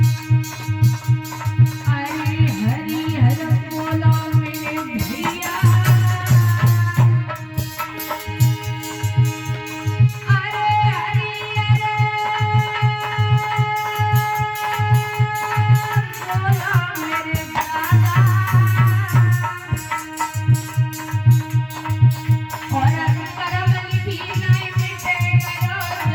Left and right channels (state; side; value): identical; both; correlation 1.00